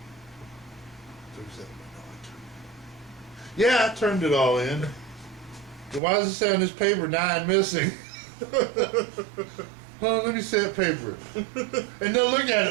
Yeah, I turned it all in. Why does it say on this paper 9 missing? Oh, let me see that paper. And they'll look at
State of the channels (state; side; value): drops out; left; at 6.0 s